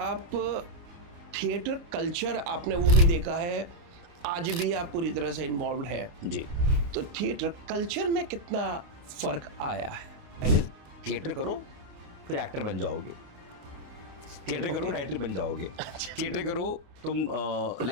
थिएटर कल्चर आपने वो भी देखा है, आज भी आप पूरी तरह से इन्वॉल्व है, जी। तो थिएटर कल्चर में कितना फर्क आया है? पहले थिएटर करो, फिर एक्टर बन जाओगे। थिएटर करो, राइटर बन जाओगे। थिएटर करो, तुम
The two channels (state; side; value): late; left; 29 ms